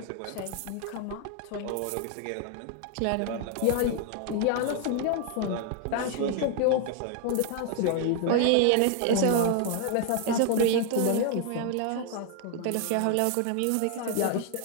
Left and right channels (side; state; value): both; different; correlation 0.00